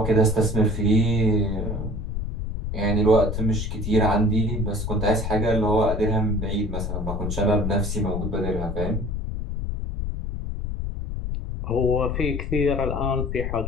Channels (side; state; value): left; noise; rumble, 3 dB below the sound